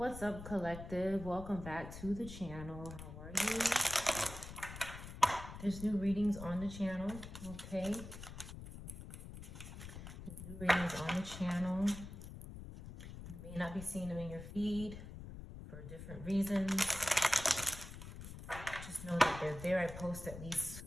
up, collective? Welcome back to the channel. How are you? There's new readings on the channel, okay? There's new readings on the channel. You may not be seeing them in your feed for different reasons. Just know that they're there. I post at least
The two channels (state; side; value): noise; left; rumble, 11 dB below the sound